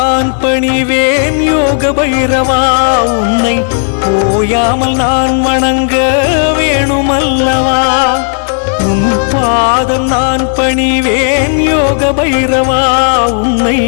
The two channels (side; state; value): right; silent; digital silence